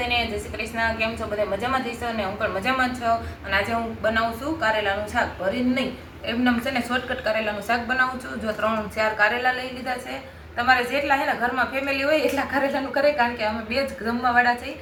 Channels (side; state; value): both; identical; correlation 1.00